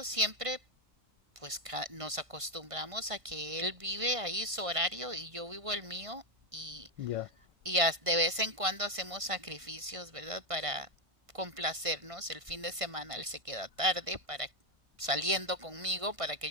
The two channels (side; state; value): left; late; 1.5 ms